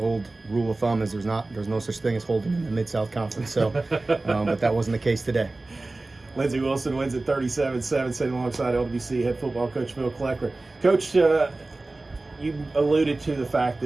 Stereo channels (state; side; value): quieter; left; 3.1 dB